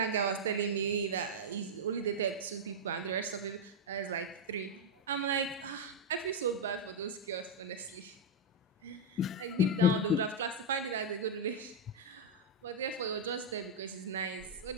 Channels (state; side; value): normal; both; correlation -0.02